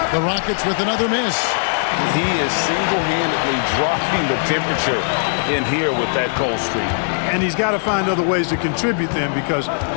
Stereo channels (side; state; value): right; silent; digital silence